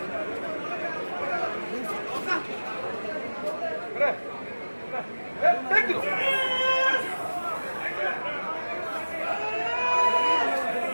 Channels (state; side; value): inverted; both; correlation -1.00